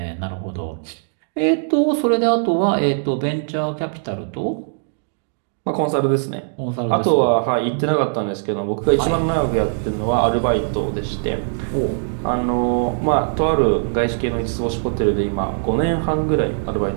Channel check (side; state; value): left; silent; digital silence